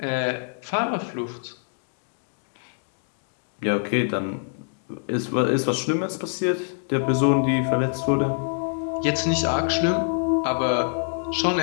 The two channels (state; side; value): silent; right; digital silence